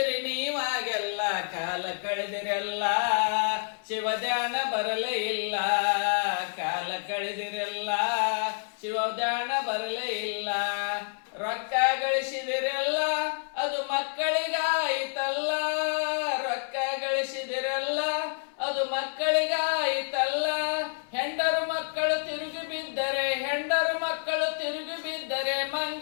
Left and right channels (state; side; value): silent; right; 59 dB below the other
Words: ನೀವಾಗೆಲ್ಲ ಕಾಲ ಕಳೆದಿರಲ್ಲ ಶಿವಧ್ಯಾನ ಬರಲೇ ಇಲ್ಲ ಕಾಲ ಕಳೆದಿರಲ್ಲ ಶಿವಧ್ಯಾನ ಬರಲೇ ಇಲ್ಲ ರೊಕ್ಕ ಗಳಿಸಿದಿರಲ್ಲ ಅದು ಮಕ್ಕಳಿಗಾಯಿತಲ್ಲ ರೊಕ್ಕ ಗಳಿಸಿದಿರಲ್ಲ ಅದು ಮಕ್ಕಳಿಗಾಯಿತಲ್ಲ ಹೆಂಡರು ಮಕ್ಕಳು ತಿರುಗಿ ಬಿದ್ದರೆ ಹೆಂಡರು ಮಕ್ಕಳು ತಿರುಗಿ ಬಿದ್ದರೆ